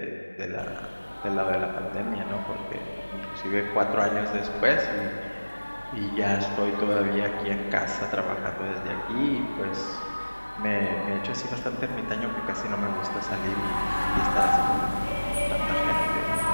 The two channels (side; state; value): both; inverted; correlation -1.00